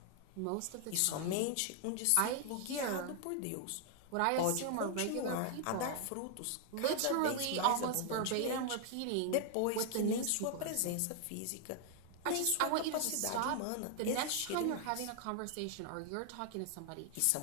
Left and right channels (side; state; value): both; different; correlation 0.00